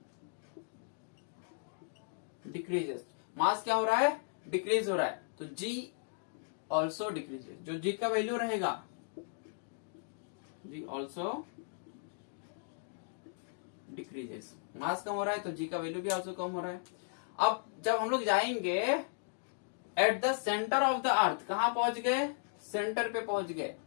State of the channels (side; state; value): right; silent; digital silence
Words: डिक्रीजेस, मास क्या हो रहा है, डिक्रीज हो रहा है, तो g ऑल्सो डिक्रीजेस। जो g का वैल्यू रहेगा, जी ऑल्सो डिक्रीजेस, मास कम हो रहा है तो जी का वैल्यू भी ऑल्सो कम हो रहा है। अब जब हम लोग जाएंगे eight the centre of the अर्थ, कहां पहुंच गए, सेंटर पे पहुंच गए,